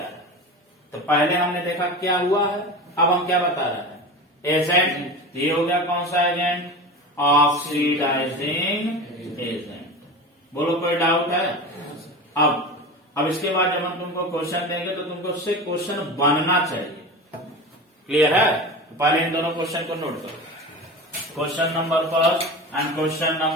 है। तो पहले हमने देखा क्या हुआ है, अब हम क्या बता रहे हैं, एजेंट। ये हो गया कौन सा एजेंट, ऑक्सीडाइजिंग एजेंट। बोलो कोई डाउट है? अब इसके बाद जब हम तुमको क्वेश्चन देंगे तो तुमको उससे क्वेश्चन बनना चाहिए। क्लियर है? पहले इन दोनों क्वेश्चन को नोट करो, क्वेश्चन नंबर फर्स्ट एंड क्वेश्चन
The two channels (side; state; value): both; normal; correlation 0.29